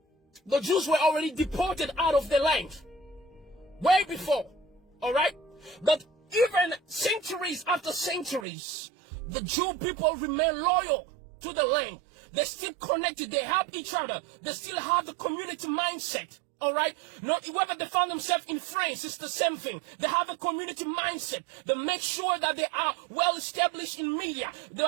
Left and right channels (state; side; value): drops out; left; at 8.5 s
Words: the Jews were already deported out of the land. Way before, all right? But even centuries after centuries, the Jew people remain loyal to the land. They're still connected. They help each other. They still have the community mindset. All right? Not whether they found themselves in France, it's the same thing. They have a community mindset. They make sure that they are well established in media. They